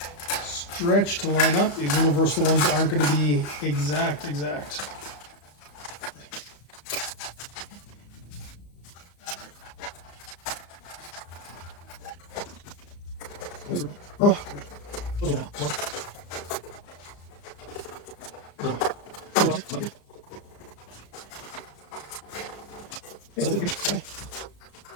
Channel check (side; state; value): right; late; 35 ms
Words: stretch to line up. These universal ones aren't going to be exact. Oh.